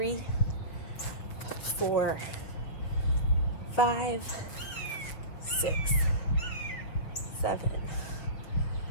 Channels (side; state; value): right; late; 6.4 ms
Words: 4, 5, 6, 7,